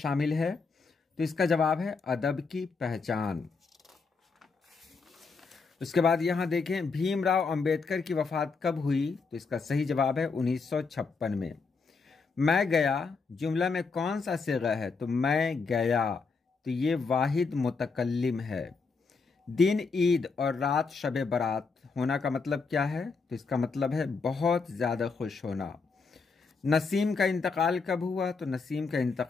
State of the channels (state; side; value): quieter; right; 4.6 dB